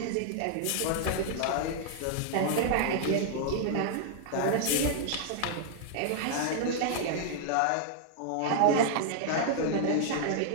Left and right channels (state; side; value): different; both; correlation -0.01